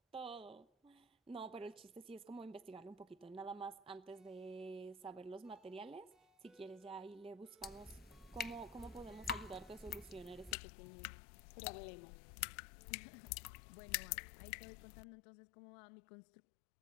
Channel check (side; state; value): right; drops out; at 10.6 s